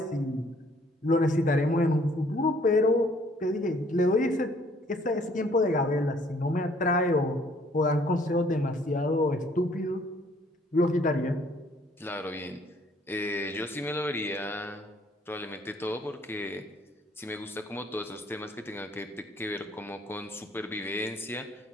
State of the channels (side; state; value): both; normal; correlation 0.61